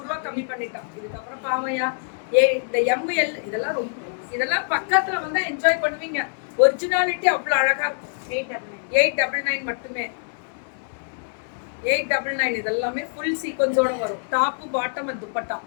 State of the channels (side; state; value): right; silent; 62 dB below the other